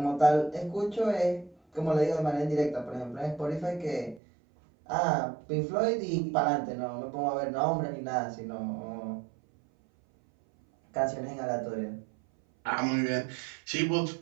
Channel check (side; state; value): left; drops out; at 4.2 s